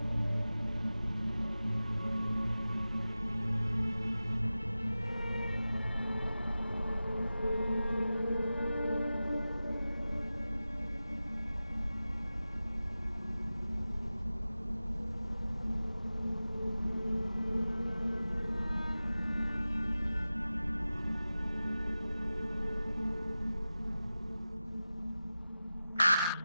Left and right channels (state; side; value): inverted; both; correlation -0.95